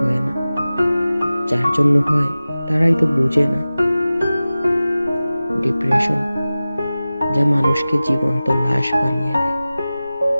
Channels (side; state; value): both; inverted; correlation -0.96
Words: না, যার জন্য হয় তারাই তো বুঝে না। ডিপ্রেশন যা মানুষকে জীবন্ত লাশ বানিয়ে দেয়।